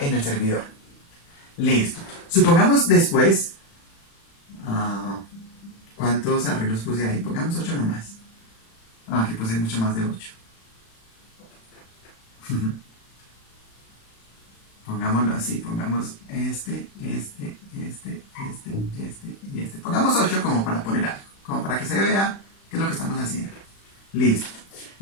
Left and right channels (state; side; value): late; right; 36 ms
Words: el servidor. Listo. Supongamos después, ¿cuántos arreglos puse ahí? Pongamos 8 nomás. Aquí puse mucho más de 8. Pongámoslo así, pongamos este y este. Pongamos 8 como para poner algo, como para que se vea qué es lo que estamos haciendo. Listo.